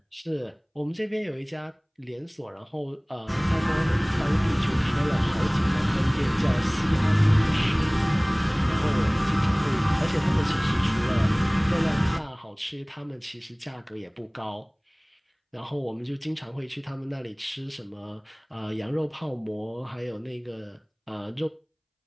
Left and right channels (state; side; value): identical; both; correlation 1.00